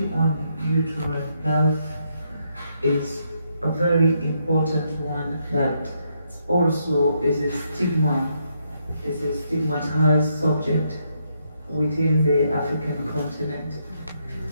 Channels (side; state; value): both; inverted; correlation -0.77